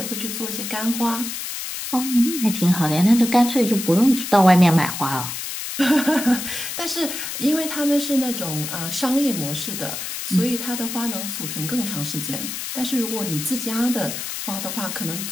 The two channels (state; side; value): noise; left; hiss, 6 dB below the sound